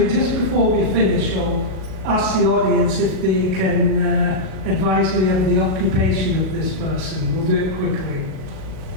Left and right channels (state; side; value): late; left; 38 ms